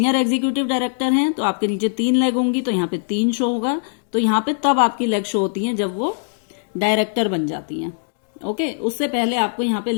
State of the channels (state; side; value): silent; right; digital silence